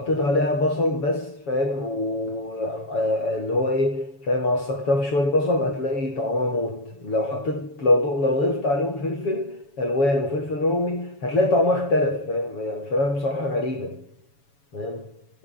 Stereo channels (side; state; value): right; late; 7.1 ms